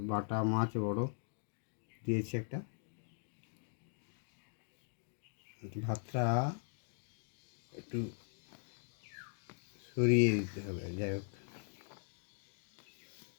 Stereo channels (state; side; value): silent; right; 51 dB below the other